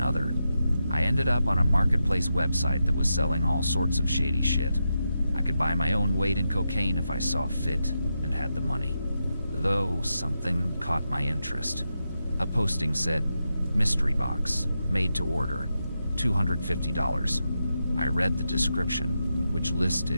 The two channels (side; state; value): both; inverted; correlation -0.87